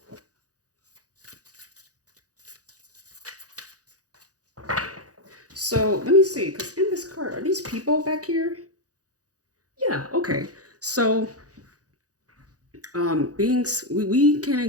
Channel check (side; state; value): left; late; 0.67 ms